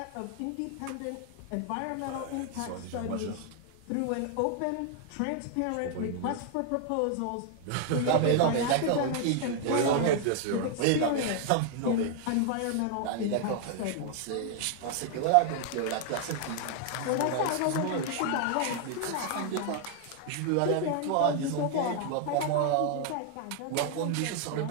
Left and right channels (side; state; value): both; different; correlation 0.00